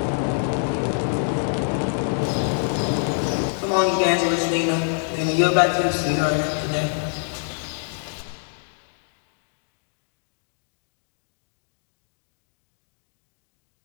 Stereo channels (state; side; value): silent; right; digital silence